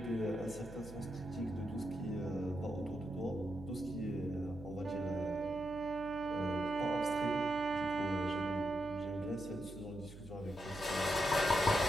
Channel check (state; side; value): noise; right; hum, 15 dB below the sound